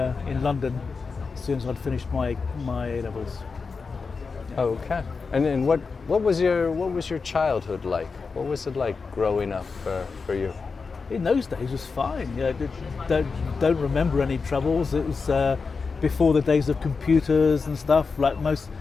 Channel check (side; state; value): right; quieter; 4.8 dB